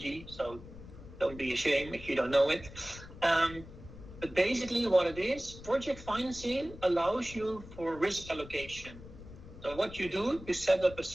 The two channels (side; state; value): left; noise; rumble, 15 dB below the sound